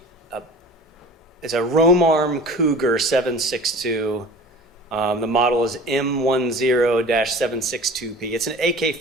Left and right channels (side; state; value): both; normal; correlation 0.40